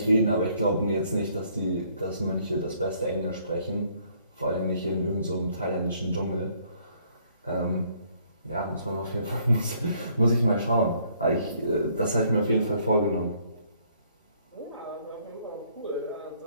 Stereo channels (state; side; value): inverted; both; correlation -0.65